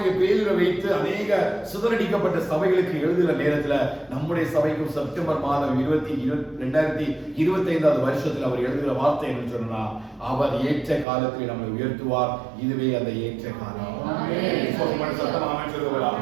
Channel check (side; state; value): left; drops out; at 11.1 s